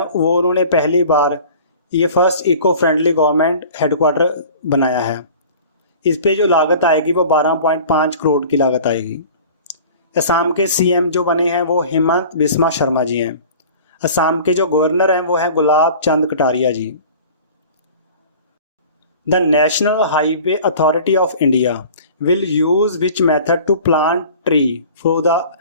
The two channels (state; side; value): inverted; both; correlation -0.43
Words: वो उन्होंने पहली बार ये first eco friendly government headquarter बनाया है। इस पे जो लागत आएगी वो 12.5 करोड़ की लागत आएगी। असम के CM जो बने हैं वो हेमंत बिस्वा शर्मा जी हैं। असम के जो गवर्नर हैं वो हैं Gulab Chand Kataria ji. The national highway authority of India will use which method to plant tree for the